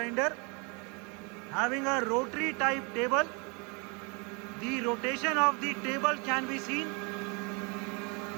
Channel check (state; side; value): quieter; left; 32.1 dB